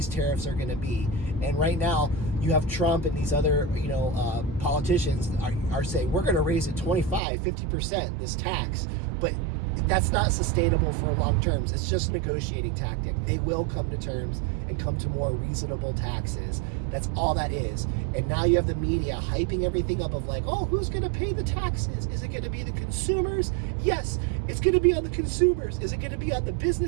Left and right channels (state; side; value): drops out; left; at 7.2 s